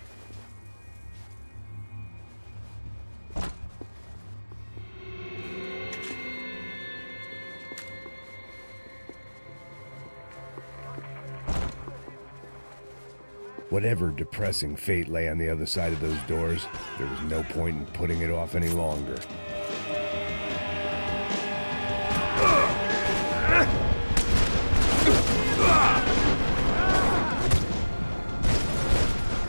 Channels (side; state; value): both; inverted; correlation -1.00